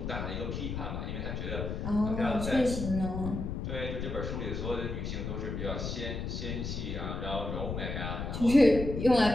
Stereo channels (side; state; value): left; noise; rumble, 4 dB below the sound